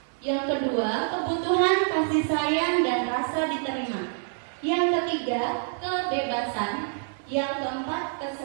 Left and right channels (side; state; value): left; silent; 60 dB below the other